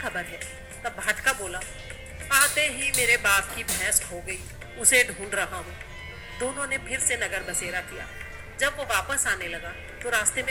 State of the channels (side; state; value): both; identical; correlation 1.00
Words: है। तब भाटका बोला, आते ही मेरे बाप की भैंस खो गई, उसे ढूंढ रहा हूँ। दोनों ने फिर से नगर बसेरा किया। जब वो वापस आने लगा तो रास्ते